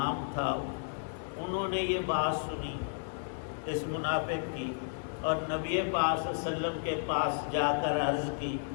تھا۔ انہوں نے یہ بات سنی اس منافق کی، اور نبی پاک صلی اللہ علیہ وسلم کے پاس جا کر عرض کی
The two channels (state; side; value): silent; right; digital silence